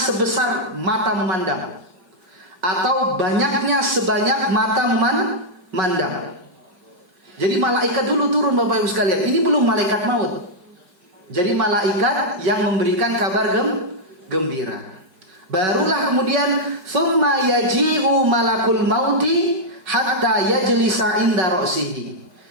mata memandang, atau banyaknya sebanyak mata memandang. Jadi malaikat dulu turun Bapak Ibu sekalian. Ini belum malaikat maut. Jadi malaikat yang memberikan kabar gembira. Barulah kemudian thumma yaji'u malakul mauti hatta yajlisa inda ra'sihi.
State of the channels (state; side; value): late; left; 5.3 ms